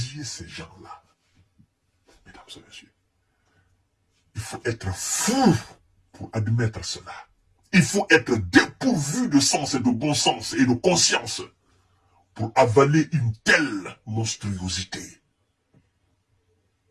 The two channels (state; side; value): identical; both; correlation 1.00